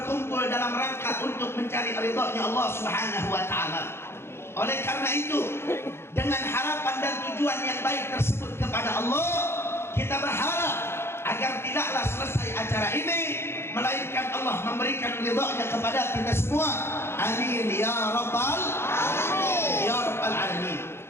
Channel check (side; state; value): right; late; 0.12 ms